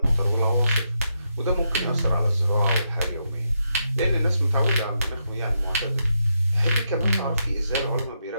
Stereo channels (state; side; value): inverted; both; correlation -0.82